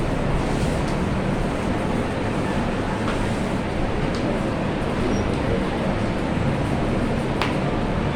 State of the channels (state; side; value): identical; both; correlation 1.00